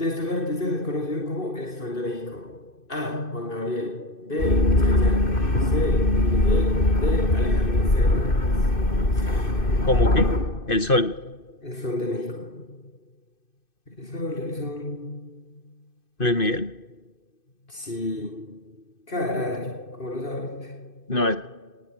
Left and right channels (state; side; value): late; right; 2.5 ms